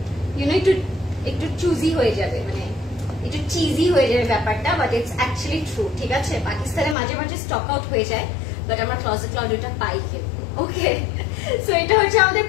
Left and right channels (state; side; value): drops out; right; at 7.0 s